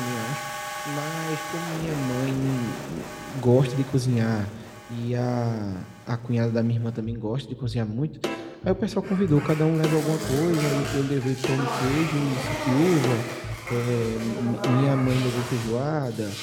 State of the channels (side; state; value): both; identical; correlation 1.00